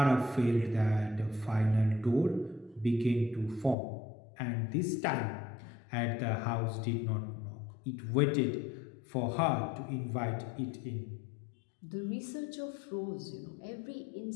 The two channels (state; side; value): drops out; right; at 3.8 s